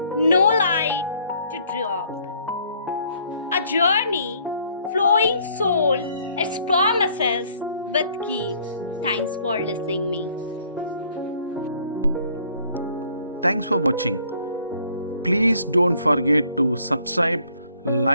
no light to drop. A journey, flowing soul, its promises with keep. Thanks for listening me. Thanks for watching. Please don't forget to subscribe,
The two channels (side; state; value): both; inverted; correlation -0.62